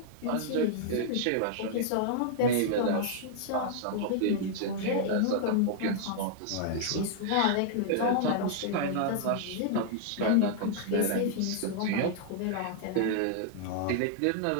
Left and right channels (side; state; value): both; different; correlation -0.01